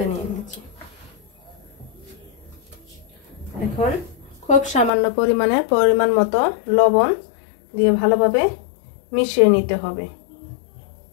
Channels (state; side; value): drops out; right; at 4.9 s